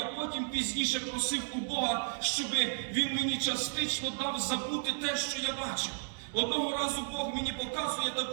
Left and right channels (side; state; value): left; silent; digital silence